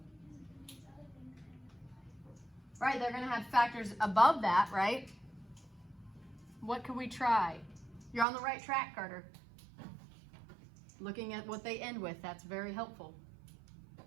Right, they're gonna have factors above that, right? What could we try? You're on the right track, Carter. Looking at what they end with, that's very helpful.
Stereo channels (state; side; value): drops out; left; at 8.2 s